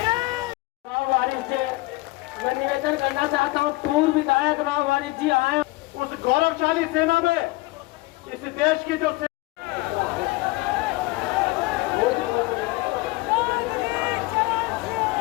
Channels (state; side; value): quieter; right; 22.0 dB